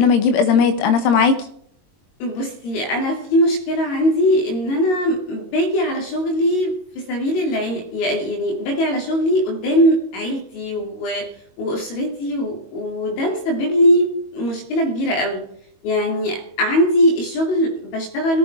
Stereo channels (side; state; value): right; late; 22 ms